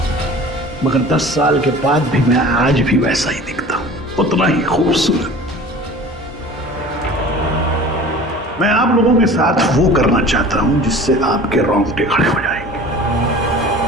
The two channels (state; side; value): normal; both; correlation 0.41